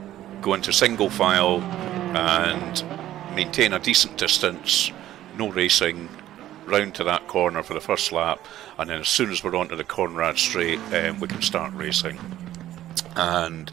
go into single file and maintain a decent distance, no racing, round to that corner for the first lap, and then as soon as we're onto the Conrad Straight, we can start racing. And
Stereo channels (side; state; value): left; quieter; 13.3 dB